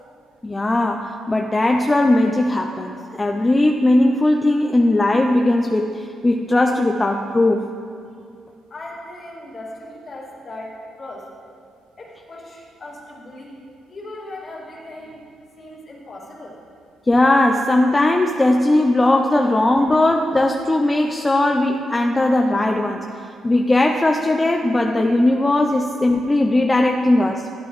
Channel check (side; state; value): both; normal; correlation 0.94